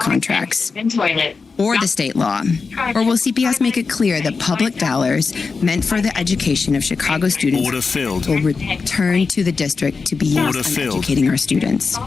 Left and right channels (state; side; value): quieter; right; 4.7 dB